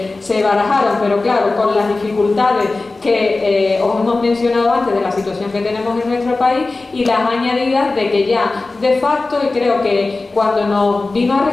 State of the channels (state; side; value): quieter; right; 3.4 dB